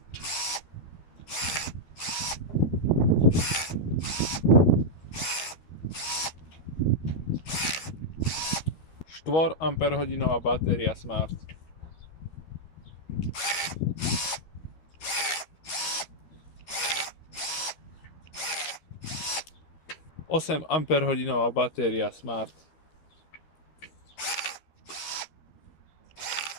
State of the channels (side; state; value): right; late; 12 ms